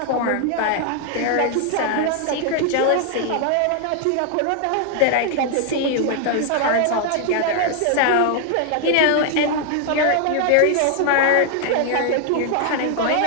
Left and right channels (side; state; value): both; different; correlation 0.00